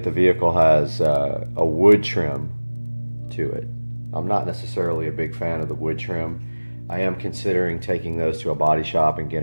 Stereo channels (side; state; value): both; inverted; correlation -1.00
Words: the vehicle has a wood trim to it. I'm not necessarily a big fan of the wood trim. I am considering taking those to a body shop and